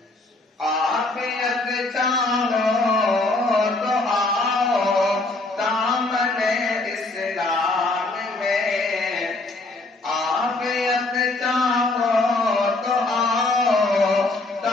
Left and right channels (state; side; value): quieter; right; 3.1 dB